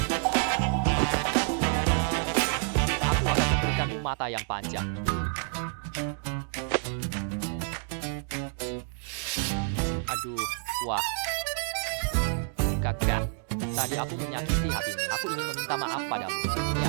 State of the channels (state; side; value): silent; left; 57 dB below the other